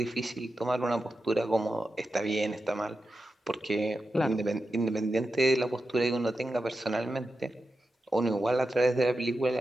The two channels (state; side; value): normal; both; correlation 0.90